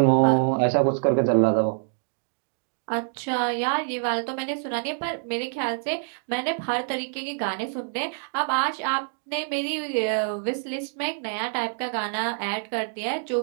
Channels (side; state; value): left; silent; digital silence